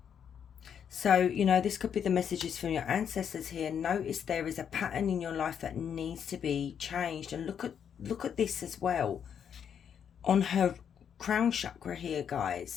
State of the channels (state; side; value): quieter; right; 8.1 dB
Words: So, you know, this could be the messages from your ancestors here. Notice there is a pattern in your life that needs to be changed. And look at this as well. On her crown chakra here,